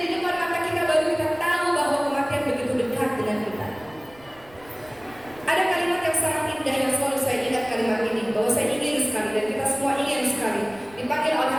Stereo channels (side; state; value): right; noise; rumble, 25 dB below the sound